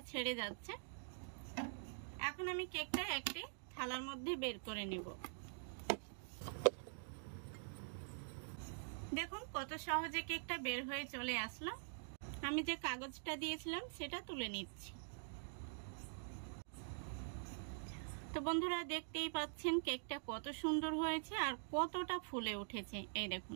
ছেড়ে যাচ্ছে। এখন আমি কেকটা একটি থালার মধ্যে বের করে নেব। দেখুন কত সহজে কেকটা বের হয়ে চলে আসলো। আমি যে কাগজটা দিয়েছিলাম সেটা তুলে নিচ্ছি। তো বন্ধুরা দেখতেই পাচ্ছেন কেকটা কত সুন্দর হয়েছে আর কতটা ফুলে উঠেছে। এই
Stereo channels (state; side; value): silent; left; digital silence